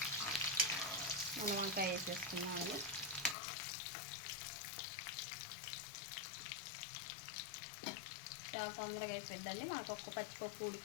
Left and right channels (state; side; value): drops out; right; at 3.4 s